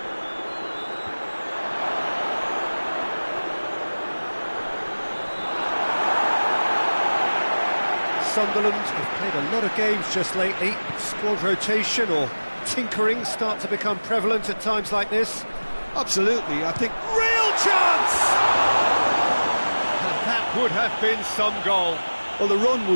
Sunderland have played a lot of games just lately. Squad rotation or tinkering start to become prevalent at times like this. Absolutely, I think... Real chance! And that would have been some goal. Well, the run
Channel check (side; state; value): both; inverted; correlation -1.00